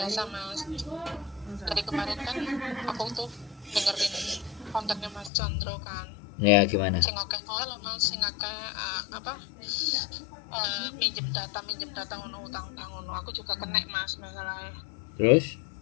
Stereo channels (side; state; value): right; drops out; at 5.3 s